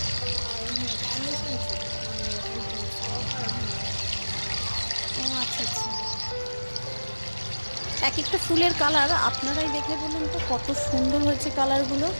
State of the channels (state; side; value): inverted; both; correlation -1.00